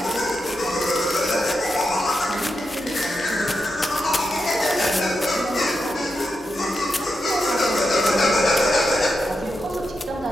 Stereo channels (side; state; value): both; normal; correlation 0.87